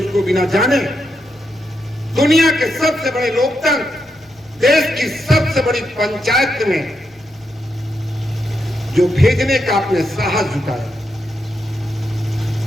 बिना जाने दुनिया के सबसे बड़े लोकतंत्र, देश की सबसे बड़ी पंचायत में जो भेजने का आपने साहस जुटाया,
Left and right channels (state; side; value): normal; both; correlation 0.83